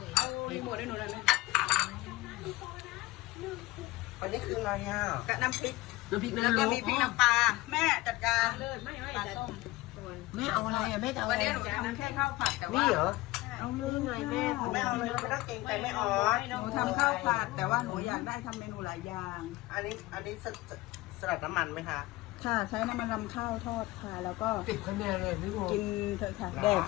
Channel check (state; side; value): quieter; right; 19.5 dB